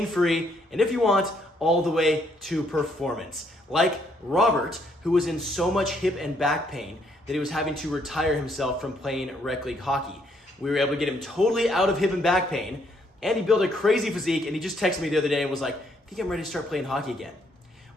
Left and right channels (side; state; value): both; normal; correlation 0.70